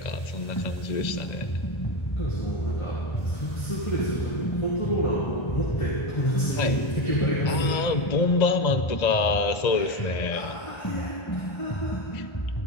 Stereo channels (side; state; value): right; late; 1.3 ms